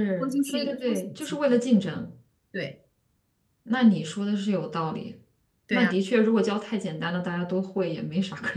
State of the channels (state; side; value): identical; both; correlation 1.00